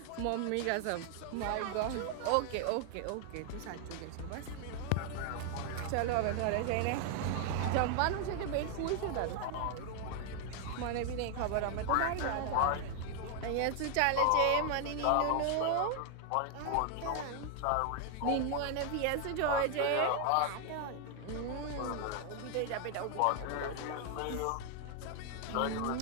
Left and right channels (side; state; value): both; different; correlation 0.00